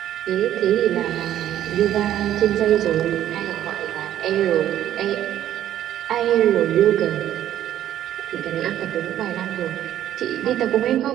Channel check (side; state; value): left; quieter; 11.8 dB